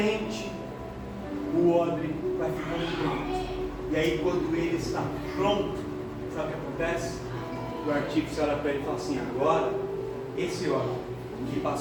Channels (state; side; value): identical; both; correlation 1.00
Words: o óleo vai ficando pronto. E aí quando ele está pronto, sabe o que acontece? O artífice olha para ele e fala assim: agora, esse óleo que